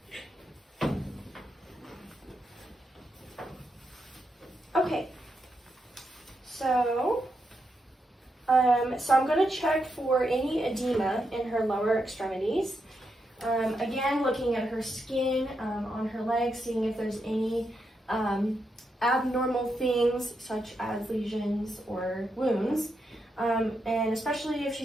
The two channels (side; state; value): both; normal; correlation 0.83